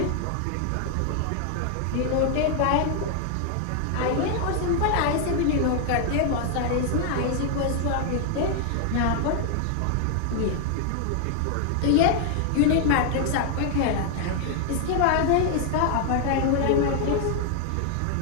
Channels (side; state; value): both; different; correlation 0.00